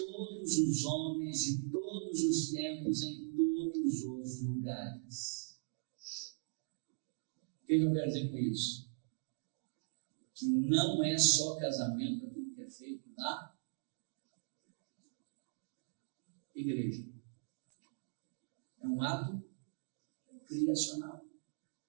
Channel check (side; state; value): left; silent; digital silence